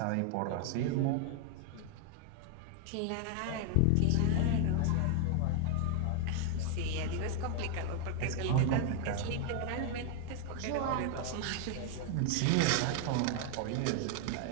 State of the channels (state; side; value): different; both; correlation 0.00